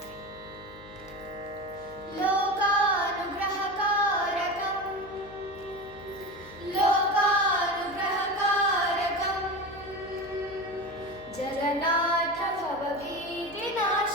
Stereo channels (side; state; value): left; noise; hum, 20 dB below the sound